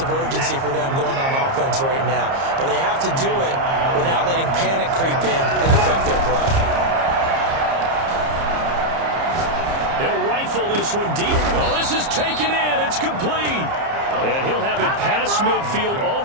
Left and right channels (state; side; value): late; left; 30 ms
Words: urgency for them going on offense right now. But they have to do it without letting panic creep in and affect their play. He'll rifle this one deep. Oh, this is taken in. It's complete. And he'll have it past midfield